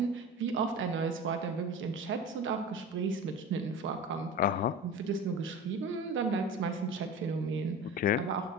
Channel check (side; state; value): both; normal; correlation 0.32